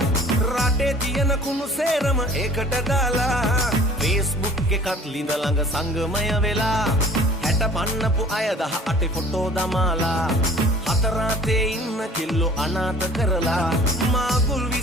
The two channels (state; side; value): normal; both; correlation 0.48